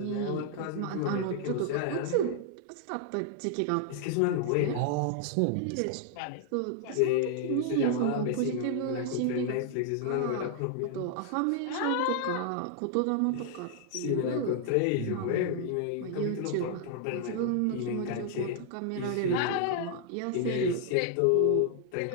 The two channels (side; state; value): both; different; correlation -0.01